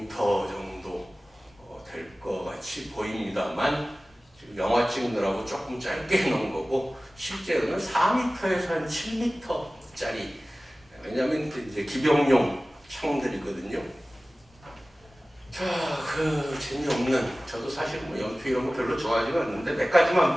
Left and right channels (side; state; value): both; normal; correlation 0.97